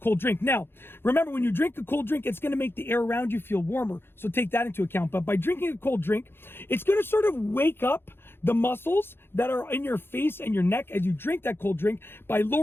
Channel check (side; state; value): right; late; 0.11 ms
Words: drink. Now, remember, when you drink a cold drink, it's going to make the air around you feel warmer. So take that into account. But by drinking a cold drink, it's going to sort of wake up the muscles that are in your face and your neck as you drink that cold drink by